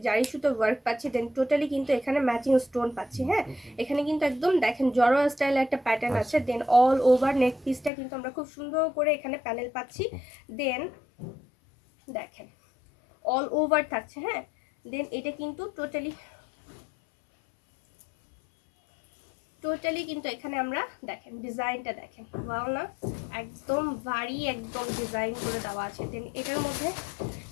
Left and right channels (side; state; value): right; drops out; at 7.9 s